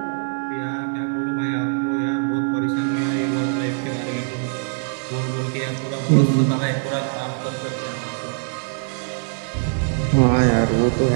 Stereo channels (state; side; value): silent; left; 60 dB below the other